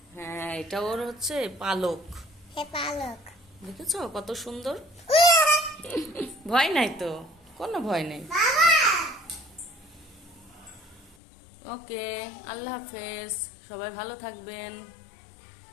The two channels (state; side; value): drops out; right; at 11.2 s